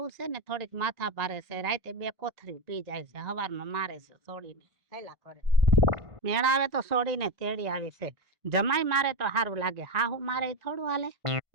છે ને થોડીક માથા ભારે છે રાતે 2 કોથરી પી જાય છે હવારમાં મારે છે સોડીને હેલા કરે મેળ આવે તો સોડીને તેડી આવી છે જમાઈ મારે તો સારું લાગે હાહુ મારે ઈ થોડું હાલે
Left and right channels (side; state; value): left; late; 1.9 ms